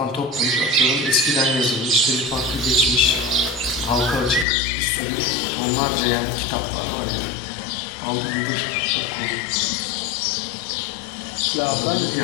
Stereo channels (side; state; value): right; drops out; at 4.5 s